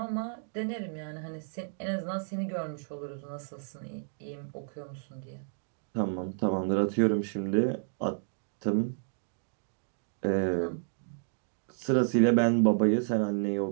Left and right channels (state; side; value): silent; left; digital silence